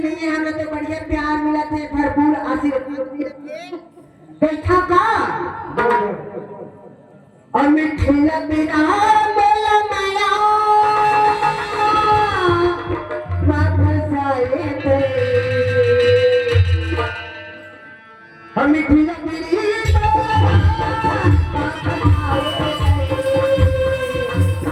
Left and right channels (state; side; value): identical; both; correlation 1.00